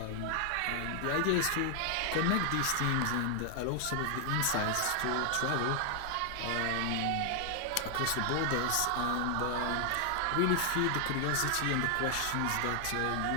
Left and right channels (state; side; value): different; both; correlation 0.00